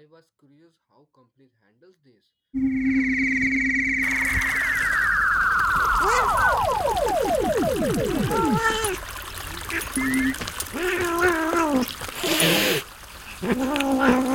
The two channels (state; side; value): identical; both; correlation 1.00